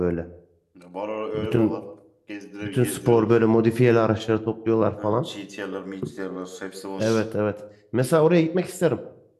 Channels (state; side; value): identical; both; correlation 1.00